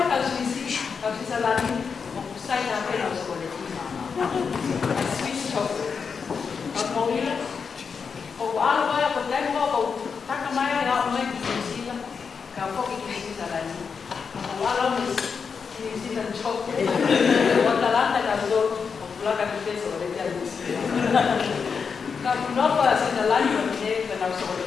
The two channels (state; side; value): quieter; right; 5.8 dB